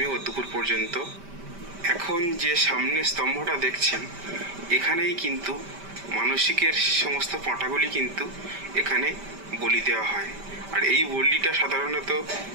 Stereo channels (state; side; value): late; left; 5.1 ms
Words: ও দুপুর পর্যন্ত। এখন যে সামনে স্তম্ভটা দেখছেন এখানেই কিন্তু মানসিকের সমস্ত পাঁঠাগুলি কিন্তু এখানে বলি দেওয়া হয়, আর এই বলিটা সাধারণত